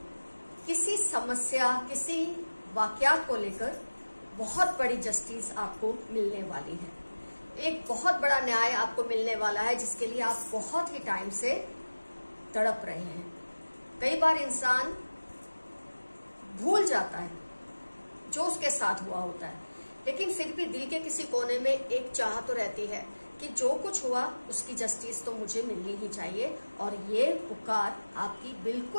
किसी समस्या, किसी वाकयात को लेकर बहुत बड़ी जस्टिस आपको मिलने वाली है। एक बहुत बड़ा न्याय आपको मिलने वाला है जिसके लिए आप बहुत ही टाइम से तड़प रहे हैं। कई बार इंसान भूल जाता है जो उसके साथ हुआ होता है, लेकिन फिर भी दिल के किसी कोने में एक चाह तो रहती है कि जो कुछ हुआ उसकी जस्टिस तो मुझे मिलनी ही चाहिए, और ये पुकार आपकी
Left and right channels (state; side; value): inverted; both; correlation -1.00